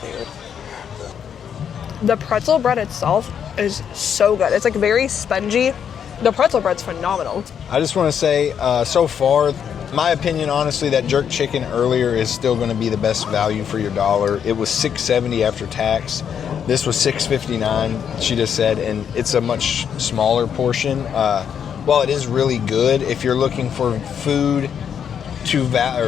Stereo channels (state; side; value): quieter; right; 8.1 dB